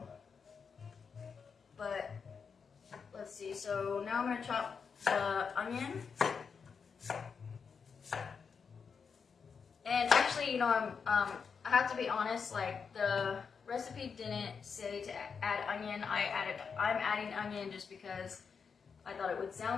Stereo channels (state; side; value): quieter; right; 5.9 dB